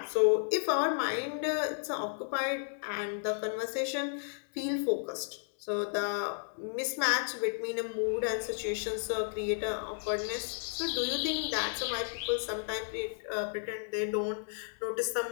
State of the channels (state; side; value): silent; right; digital silence